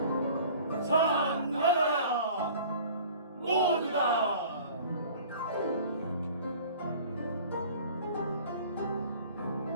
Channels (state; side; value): inverted; both; correlation -0.47